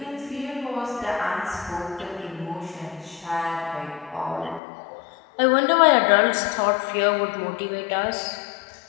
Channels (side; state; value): right; drops out; at 4.6 s